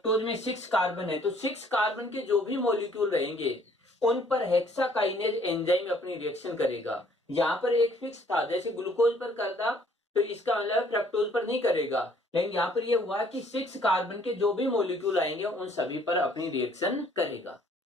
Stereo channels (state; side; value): normal; both; correlation 0.61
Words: में 6 कार्बन है, तो 6 कार्बन के जो भी मॉलिक्यूल रहेंगे उन पर हेक्साकाइनेज एंजाइम अपनी रिएक्शन करेगा। यहां पर एक फिक्स था, जैसे ग्लूकोज पर करता तो इसका मतलब फ्रक्टोज पर नहीं करेगा, लेकिन यहां पर यह हुआ कि 6 कार्बन के जो भी मॉलिक्यूल आएंगे उन सभी पर अपनी रिएक्शन करेगा,